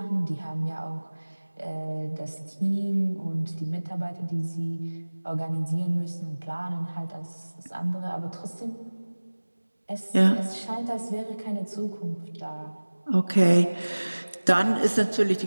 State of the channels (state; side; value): inverted; both; correlation -1.00